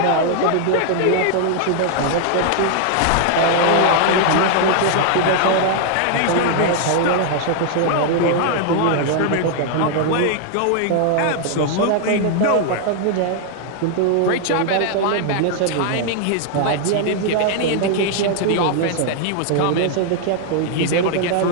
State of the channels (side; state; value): both; different; correlation 0.00